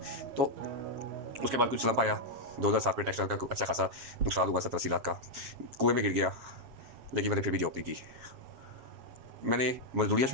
तो उसके बाद कुछ स्लम्प आया। 2007 में टेक्सटाइल का अच्छा खासा नुकसान हुआ, 70-80 लाख का, कुएं में गिर गया। लेकिन मैंने फिर भी जॉब नहीं की, मैंने मजदूरियाँ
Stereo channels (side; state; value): left; late; 7.6 ms